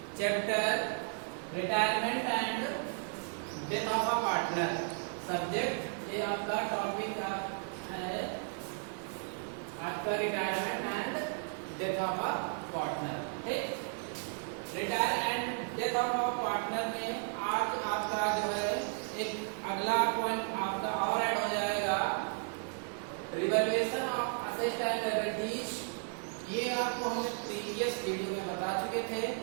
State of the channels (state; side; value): silent; left; 55 dB below the other